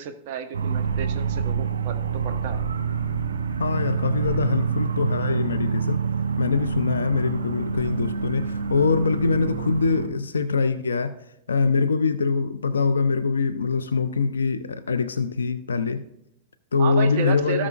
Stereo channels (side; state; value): both; inverted; correlation -0.72